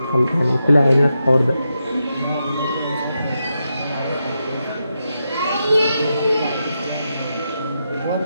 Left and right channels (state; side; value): inverted; both; correlation -0.86